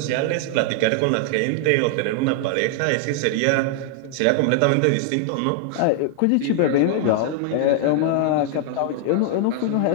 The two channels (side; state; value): both; different; correlation 0.00